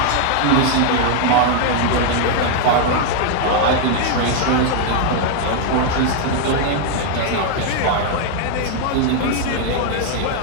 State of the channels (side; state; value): both; different; correlation 0.00